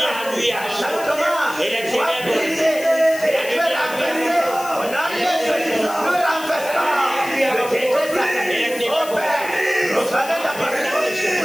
lui a et les ténèbres.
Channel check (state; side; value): noise; left; hiss, 14 dB below the sound